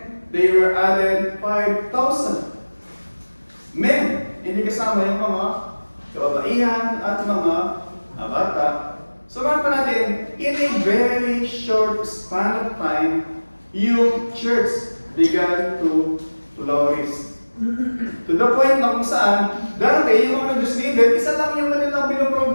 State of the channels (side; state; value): both; inverted; correlation -1.00